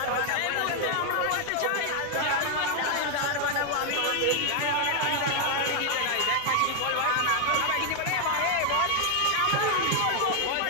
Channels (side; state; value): both; different; correlation 0.01